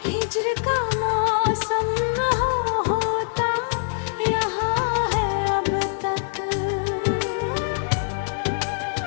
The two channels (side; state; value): right; silent; 60 dB below the other